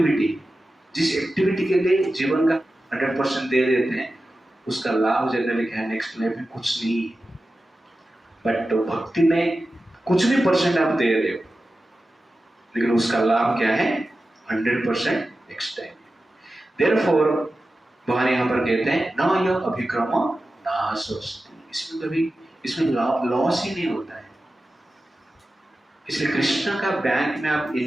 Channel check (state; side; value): normal; both; correlation 0.93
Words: जिस एक्टिविटी के लिए जीवन का 100% दे देते हैं, उसका लाभ जनरली क्या है, नेक्स्ट लाइफ में कुछ नहीं है। बट भक्ति में कुछ भी परसेंट आप दे रहे हो, लेकिन उसका लाभ क्या है, 100% नेक्स्ट टाइम। देयरफॉर भगवान यहाँ पर कहते हैं न यह अभिक्रम नाशोस्ति, इसमें लॉस ही नहीं होता है। इसलिए कृष्ण का बैंक में आप